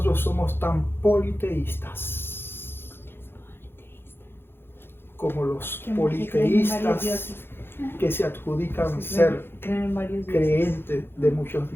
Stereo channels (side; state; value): right; late; 0.11 ms